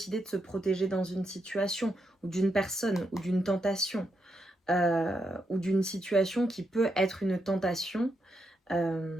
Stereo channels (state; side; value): normal; both; correlation 0.82